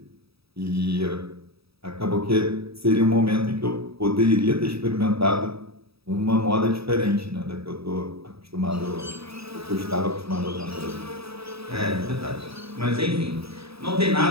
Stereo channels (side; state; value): left; late; 0.77 ms